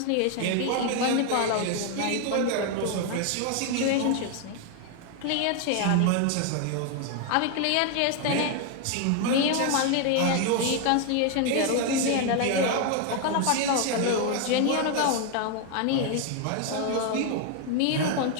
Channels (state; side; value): different; both; correlation 0.01